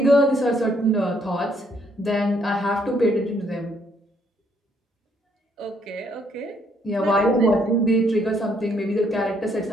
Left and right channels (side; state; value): both; normal; correlation 0.69